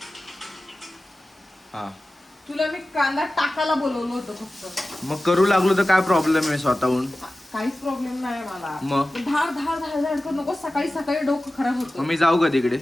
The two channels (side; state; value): both; normal; correlation 0.95